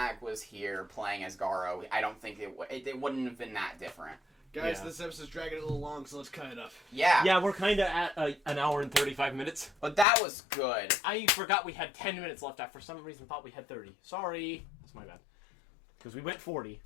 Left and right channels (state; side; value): drops out; right; at 10.1 s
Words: was here playing as Garo, I don't think it wouldn't have been that different. Guys, Yeah. this episode's dragging a little long, so let's cut it up. Yeah. Yeah, we're kind of at an hour and 35 minutes. But that was good. I forgot we had 10 minutes left. I, for some reason, thought we had 30. Sorry. That's my bad. Because we went 40